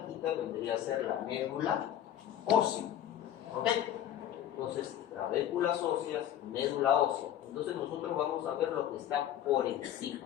vendría a ser la médula ósea. ¿Ok? Entonces, trabéculas óseas, médula ósea. Entonces nosotros vamos a ver lo que está por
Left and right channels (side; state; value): right; quieter; 11.1 dB